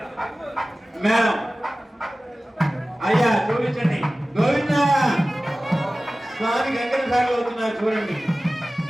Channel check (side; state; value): both; normal; correlation 0.97